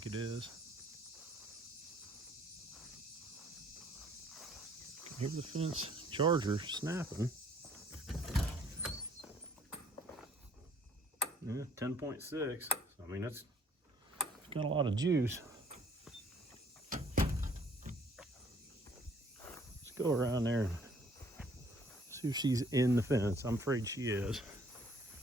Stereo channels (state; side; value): normal; both; correlation 0.59